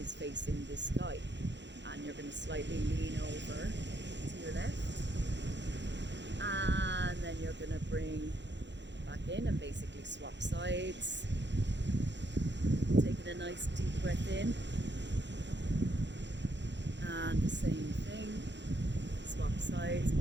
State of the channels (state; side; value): late; left; 0.52 ms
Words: facing the sky. And you're going to slightly lean over to your left, and then you're going to bring back in and basically swap sides. Taking a nice deep breath in, and the same thing, swap sides,